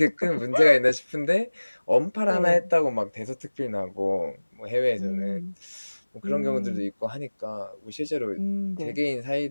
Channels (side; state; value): both; inverted; correlation -1.00